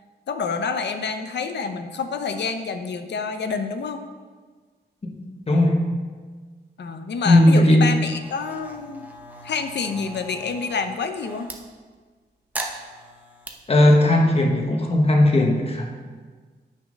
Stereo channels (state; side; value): normal; both; correlation 0.76